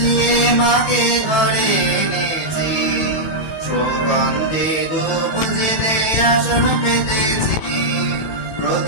মাকে ঘরে এনেছি, সুগন্ধি ধূপ জেলে আসন পেতেছি,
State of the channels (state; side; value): late; right; 18 ms